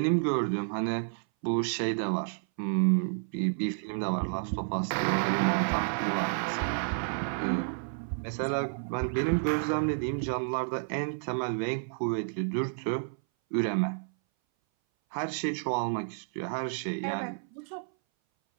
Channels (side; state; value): left; silent; 58 dB below the other